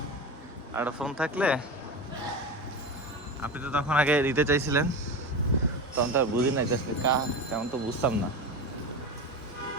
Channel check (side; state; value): both; normal; correlation 0.24